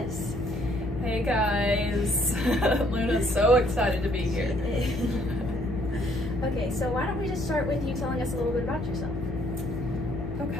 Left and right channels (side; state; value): left; noise; hum, 11 dB below the sound